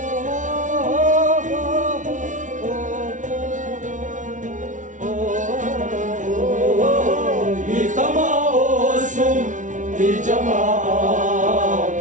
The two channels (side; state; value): left; late; 0.37 ms